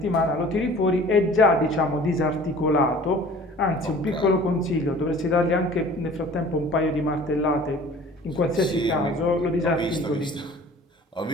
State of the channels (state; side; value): normal; both; correlation 0.47